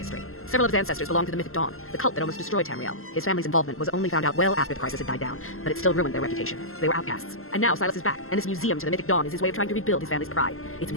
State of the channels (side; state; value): right; late; 0.62 ms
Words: Several of his ancestors belong to the Mythic Dawn, the cult that almost destroyed Tamriel. His family's involvement was only found out well after the crisis had died down, but it still ruined their reputation. They were outcasts. And now Silas is back, and this museum to the Mythic Dawn is his way of trying to rebuild his family's pride. It's